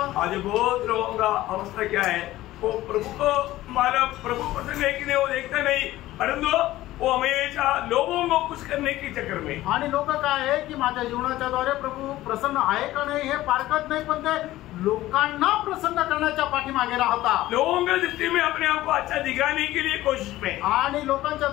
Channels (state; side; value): quieter; right; 15.9 dB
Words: आज बहुत लोगों का अवस्था क्या है, वो प्रभु को माना प्रभु प्रसन्न है कि नहीं वो देखता नहीं, परंतु वो हमेशा लोगों को खुश करने के चक्कर में। आणि लोक काय आहे की माझ्या जीवनाच्या द्वारे प्रभू प्रसन्न आहे का नाही हे पारखत नाही, पण ते लोकांना प्रसन्न करण्याच्या पाठीमागे राहतात। लोगों की दृष्टि में अपने आप को अच्छा दिखाने के लिए कोशिश में आणि लोकांच्या